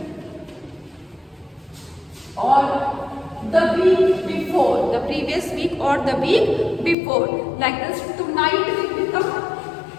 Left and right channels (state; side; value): drops out; right; at 7.0 s